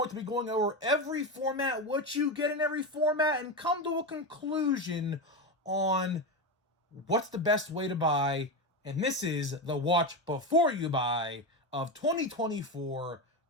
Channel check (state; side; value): normal; both; correlation 0.15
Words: to be going over every format, what you get in every format, and come to a conclusion on what's the best way to buy. And this is the watch before you buy of 2024